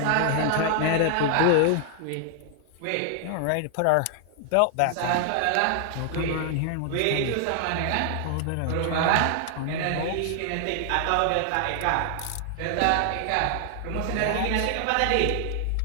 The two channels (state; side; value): different; both; correlation 0.00